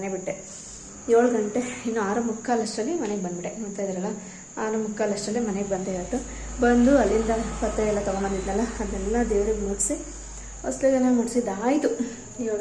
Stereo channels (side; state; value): both; identical; correlation 1.00